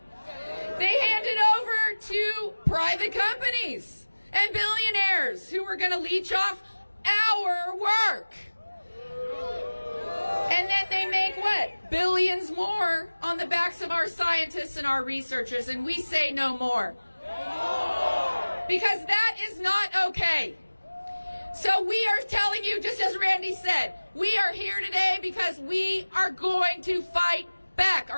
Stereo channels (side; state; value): both; inverted; correlation -1.00